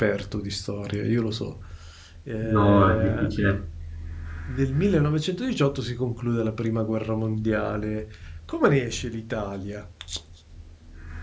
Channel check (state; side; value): identical; both; correlation 1.00